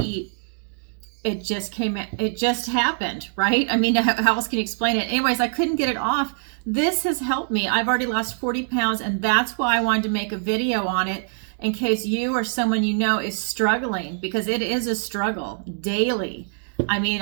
eat. It just happened, right? I mean, how else can you explain it? Anyways, I couldn't get it off. This has helped me. I've already lost 40 pounds, and that's why I wanted to make a video on it in case you or someone you know is struggling, because it is a struggle daily. I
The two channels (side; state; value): left; silent; digital silence